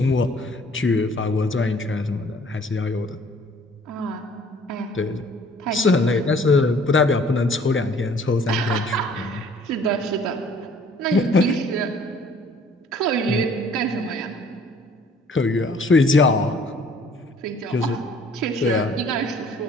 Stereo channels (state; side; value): normal; both; correlation 0.56